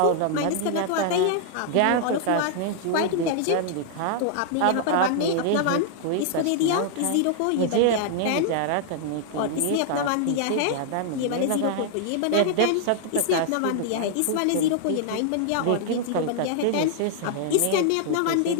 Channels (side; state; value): both; different; correlation -0.01